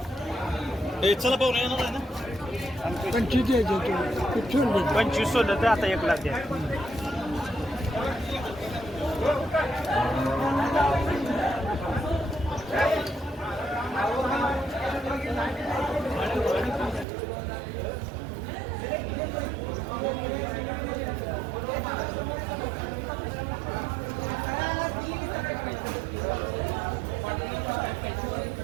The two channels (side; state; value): left; drops out; at 17.1 s